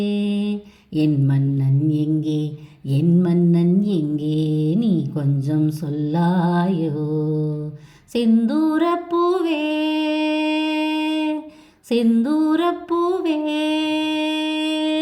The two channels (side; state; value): both; identical; correlation 1.00